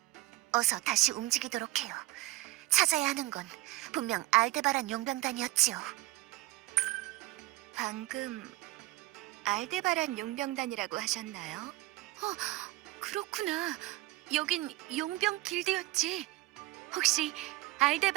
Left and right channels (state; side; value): quieter; left; 18.7 dB